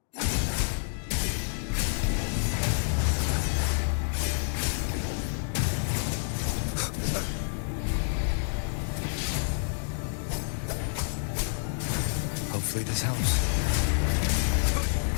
Hopefully this helps.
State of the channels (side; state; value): right; silent; digital silence